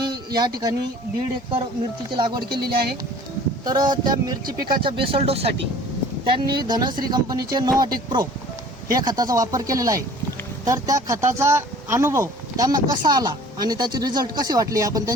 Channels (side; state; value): both; normal; correlation 0.48